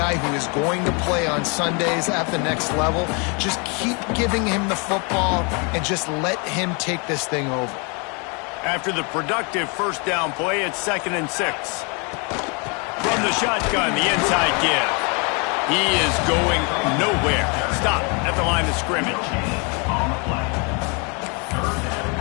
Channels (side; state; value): right; quieter; 33.3 dB